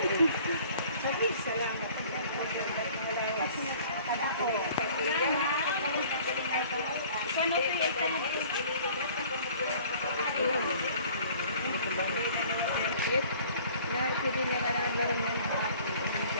Salamat. Pwede niya nga naglaran yan.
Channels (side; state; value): both; inverted; correlation -0.52